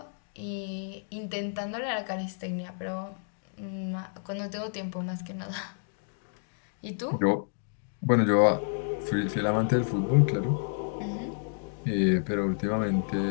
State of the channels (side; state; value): right; silent; digital silence